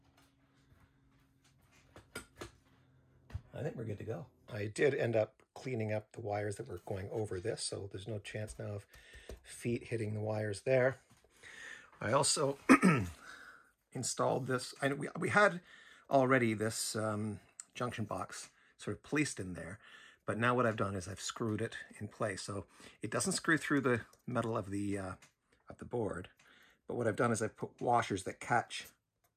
I think we're good to go. I did end up cleaning up the wires that were going over this, so there's no chance now of feet hitting the wires there. I also installed this. We had already this junction box sort of placed in there, but now what I've done is I've screwed it in place. So it doesn't screw through the metal of the board, but what I've done is I've put washers that catch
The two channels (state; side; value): identical; both; correlation 1.00